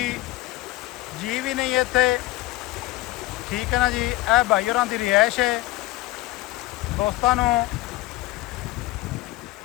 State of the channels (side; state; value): right; quieter; 17.8 dB